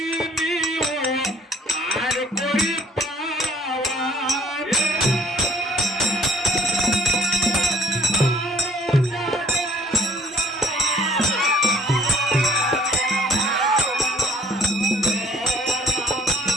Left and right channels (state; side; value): normal; both; correlation 0.58